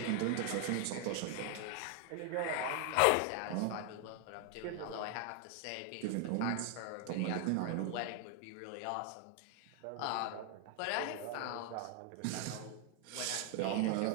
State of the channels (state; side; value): different; both; correlation 0.00